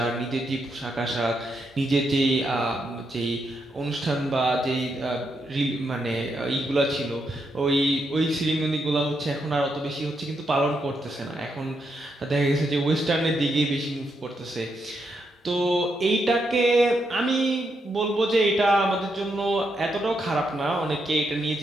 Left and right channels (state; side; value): normal; both; correlation 0.81